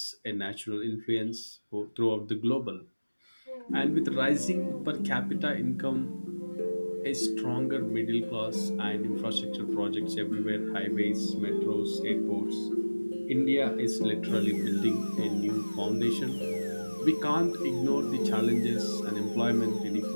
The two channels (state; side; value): inverted; both; correlation -1.00